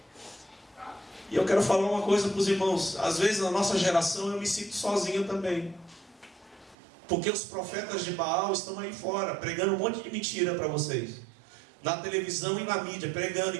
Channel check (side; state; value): left; drops out; at 6.8 s